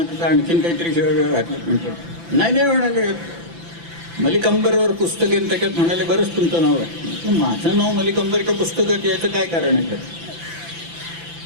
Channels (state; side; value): late; left; 5.9 ms